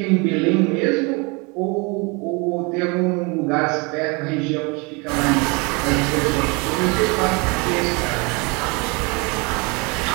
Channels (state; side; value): quieter; left; 29.5 dB